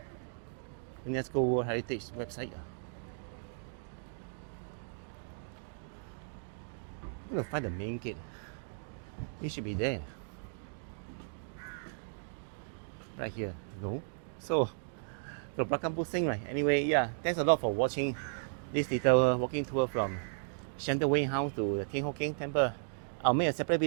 UNESCO World Heritage website. I'm gonna find the main gate. It should be there. Right here. No. So, the Belakang Pusing, right? Anyway, yeah, thanks a lot for watching this little walking tour from Shenton Wing House to the Thian Temple. I'll make a separate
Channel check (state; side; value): silent; left; digital silence